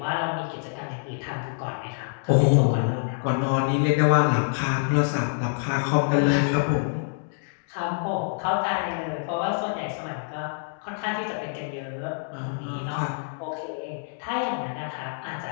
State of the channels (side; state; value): right; silent; digital silence